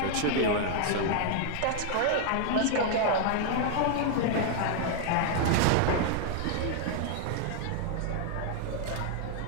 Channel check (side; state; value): both; different; correlation 0.00